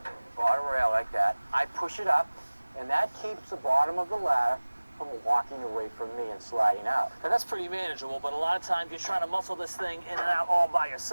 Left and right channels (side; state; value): both; inverted; correlation -1.00